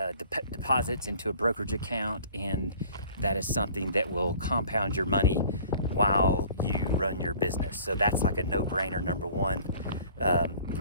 deposits into a brokerage account, and that is something that will compound your money while you run your business. So that's like a no-brainer, number one. You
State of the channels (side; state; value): both; inverted; correlation -0.50